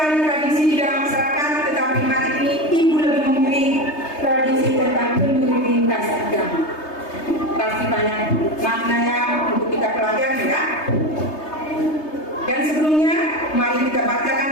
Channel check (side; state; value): right; late; 3.3 ms